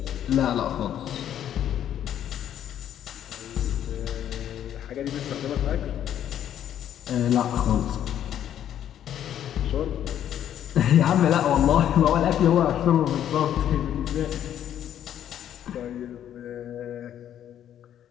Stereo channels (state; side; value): quieter; right; 10.5 dB